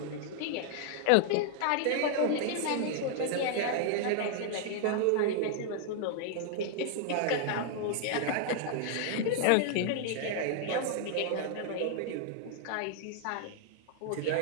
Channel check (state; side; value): different; both; correlation -0.01